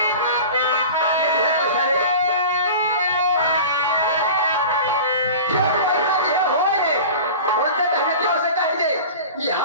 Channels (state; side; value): inverted; both; correlation -0.36